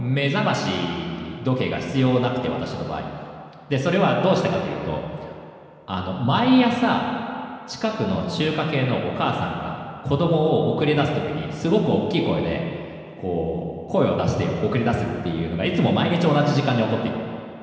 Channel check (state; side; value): identical; both; correlation 1.00